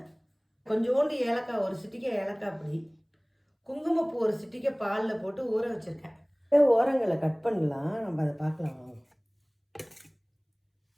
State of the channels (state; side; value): identical; both; correlation 1.00